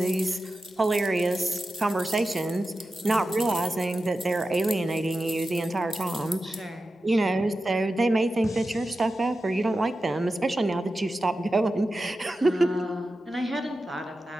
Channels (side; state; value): both; normal; correlation 0.92